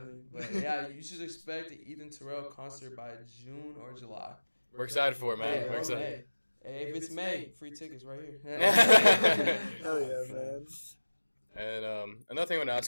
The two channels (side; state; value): both; inverted; correlation -1.00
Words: But yeah, you should expect the Ethan Terell concert by June or July. We're excited for it, man. Hey, We're excited. Hey, if it's May, free tickets right here. Hell yeah, man. And another thing I want to ask